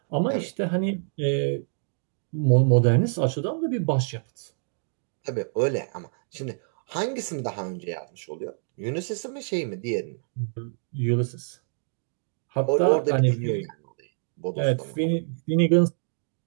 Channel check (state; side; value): silent; left; digital silence